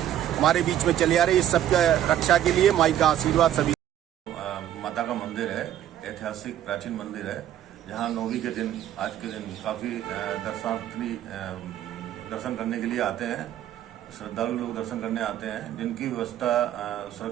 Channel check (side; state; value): left; quieter; 11.5 dB